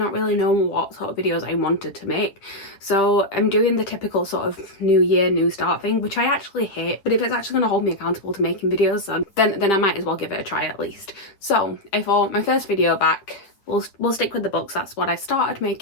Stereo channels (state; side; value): late; right; 9.9 ms